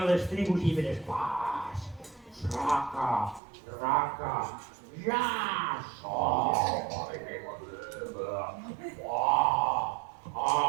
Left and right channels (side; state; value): left; drops out; at 3.4 s